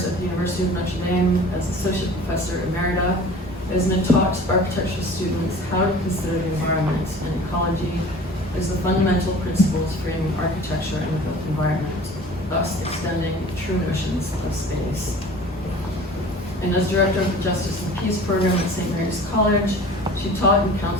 at the University of Notre Dame as Associate Professor Emerita, Esme taught architectural students how to consider the environment and ecology as the fundamental principles framing architecture and the built environment, thus extending true notions of space. And as Director of the Justice and Peace Program at St. Mary's College, she taught and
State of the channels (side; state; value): both; normal; correlation 0.43